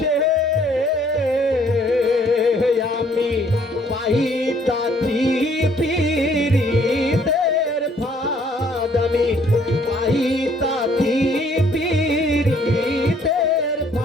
আমি পাইতাছি পীরিতের ফাঁদ আমি পাইতাছি পীরিতের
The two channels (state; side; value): normal; both; correlation 0.62